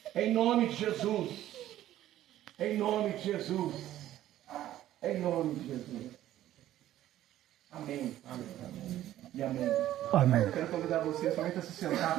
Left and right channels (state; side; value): quieter; left; 13.2 dB